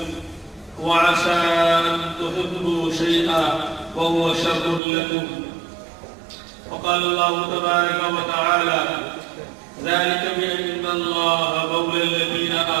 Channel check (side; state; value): left; drops out; at 4.8 s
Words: وعسى أن تحبوا شيئا وهو شر لكم وقال الله تبارك وتعالى ذلك بأن الله مولى الذين